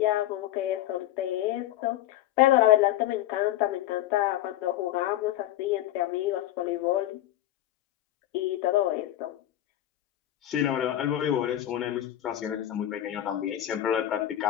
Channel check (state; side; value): quieter; right; 13.3 dB